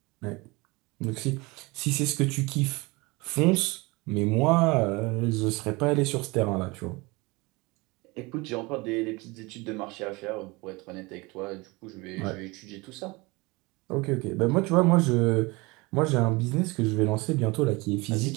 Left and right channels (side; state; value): left; quieter; 24.6 dB